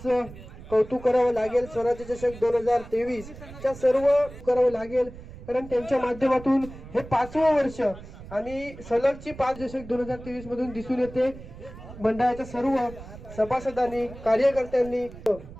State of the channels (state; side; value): noise; right; rumble, 15 dB below the sound